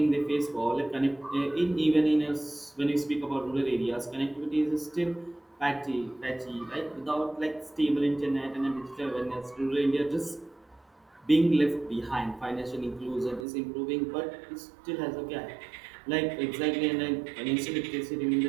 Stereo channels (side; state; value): left; drops out; at 13.5 s